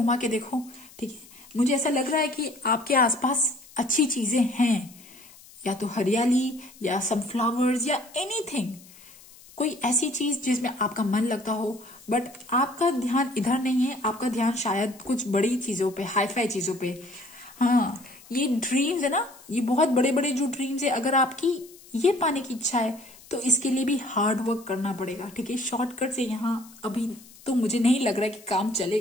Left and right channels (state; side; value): noise; left; hiss, 22 dB below the sound